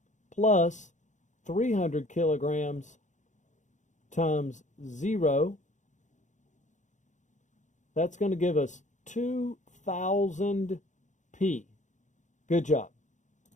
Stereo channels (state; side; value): late; right; 0.35 ms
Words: plus 300 kilograms times 0, that's going to give us 2,000 P. Good job.